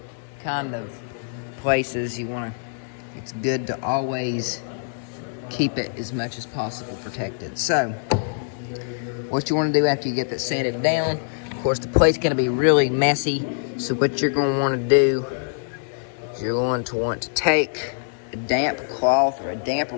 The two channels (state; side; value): silent; right; digital silence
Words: kind of places, it's good to always keep it as much as possible protected. So, what you want to do after you get that sanded down, of course the plate's going to be really messy, so what you're going to want to do is you're going to want to take a damp cloth or a damp